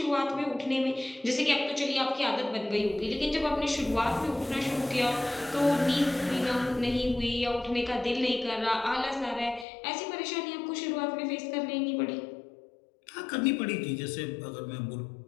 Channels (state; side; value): drops out; right; at 9.7 s